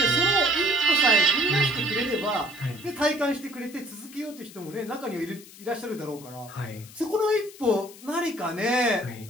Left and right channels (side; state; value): left; noise; hiss, 19 dB below the sound